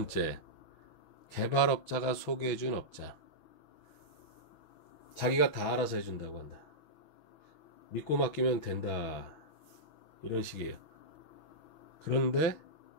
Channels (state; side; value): late; right; 6.1 ms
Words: 개발업자가 소개해준 업자. 자기가 다 알아서 해준다고 한다. 믿고 맡기면 된다. 이런 식이에요. 그런데